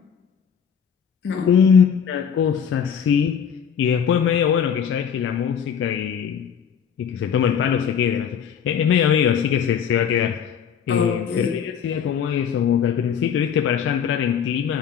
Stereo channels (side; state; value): right; quieter; 7.7 dB